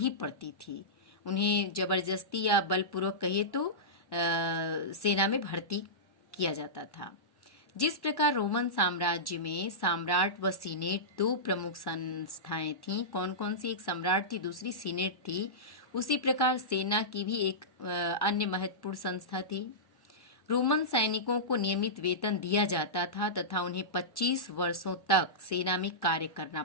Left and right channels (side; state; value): right; late; 1.1 ms